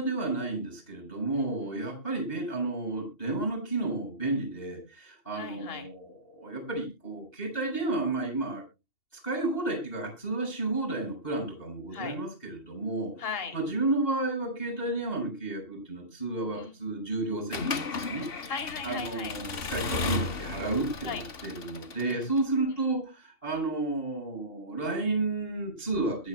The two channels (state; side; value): late; right; 2.7 ms